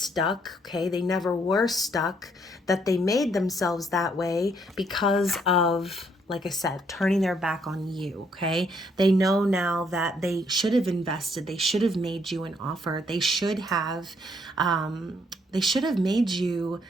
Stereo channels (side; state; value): both; normal; correlation 0.70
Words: okay? They never were stuck, that they made themselves that way because of, like I said, turning their back on you, okay? They know now that they should have invested, they should have made you an offer, they should have made you